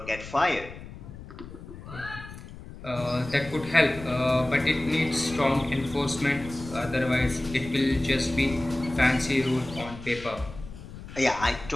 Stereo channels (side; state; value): left; noise; rumble, 14 dB below the sound